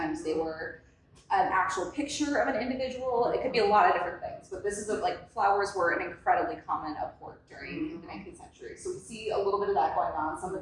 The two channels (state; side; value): identical; both; correlation 1.00